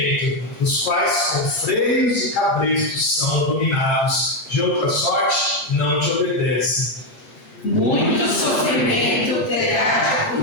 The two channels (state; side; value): late; right; 8.7 ms